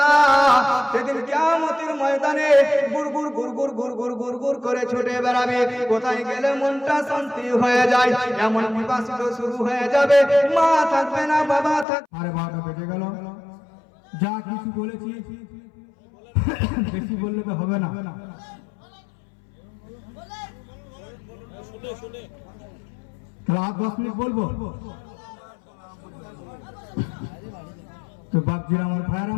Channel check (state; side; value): drops out; right; at 11.9 s